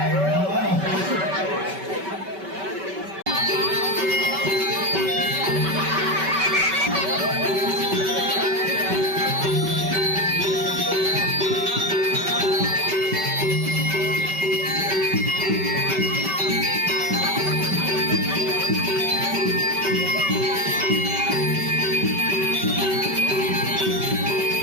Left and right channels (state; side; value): late; left; 5.2 ms